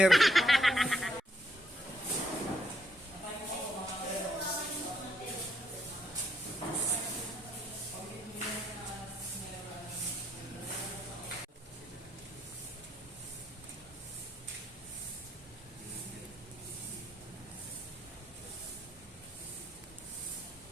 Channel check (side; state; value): both; normal; correlation 0.74